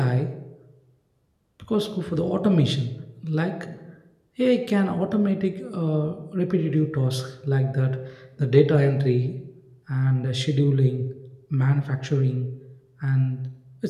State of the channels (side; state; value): both; identical; correlation 1.00